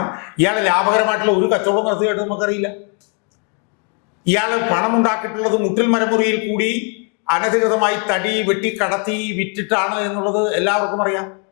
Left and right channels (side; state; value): right; quieter; 38.7 dB